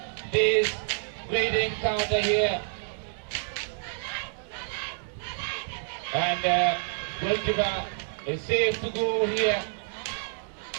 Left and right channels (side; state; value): left; silent; digital silence